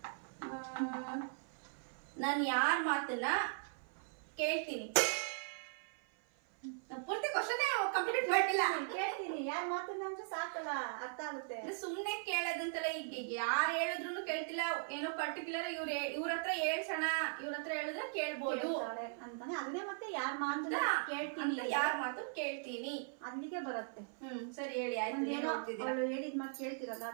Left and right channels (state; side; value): silent; left; 52 dB below the other